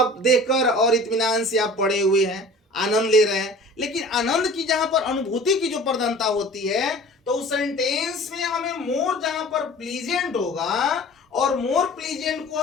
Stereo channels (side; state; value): both; normal; correlation 0.44